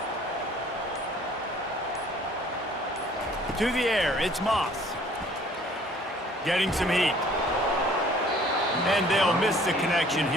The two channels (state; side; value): normal; both; correlation 0.55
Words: To the air, it's Moss. Getting some heat. And they'll miss the connection